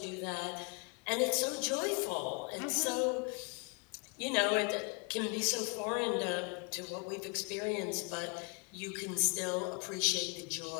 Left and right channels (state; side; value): quieter; right; 31.9 dB